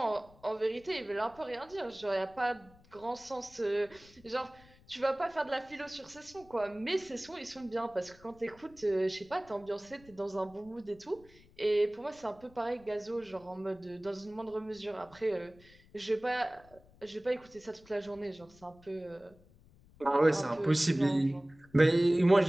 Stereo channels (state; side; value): noise; left; rumble, 26 dB below the sound